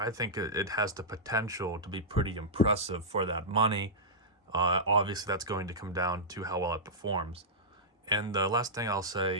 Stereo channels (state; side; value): normal; both; correlation -0.11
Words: think it has the potential to be pretty impressive for that money. Obviously, that's going to come down to how well it performs. And the last thing I'll say